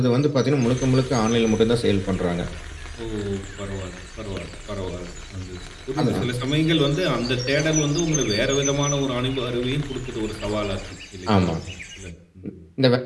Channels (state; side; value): identical; both; correlation 1.00